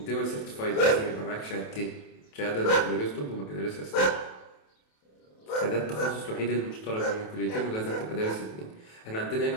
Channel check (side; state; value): right; late; 27 ms